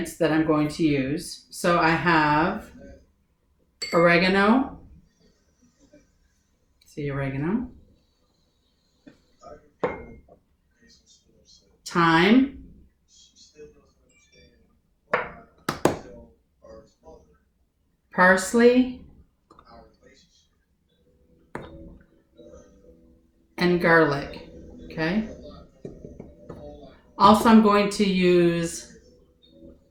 that I'm going to use. So I have oregano. See oregano. Thyme. Parsley. And garlic. Okay. Also, I'm going to use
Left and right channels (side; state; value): both; identical; correlation 1.00